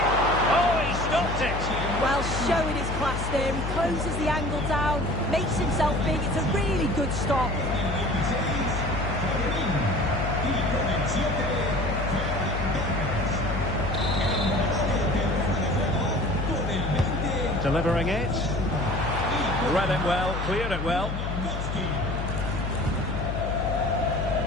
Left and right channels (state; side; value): noise; left; hum, 4 dB below the sound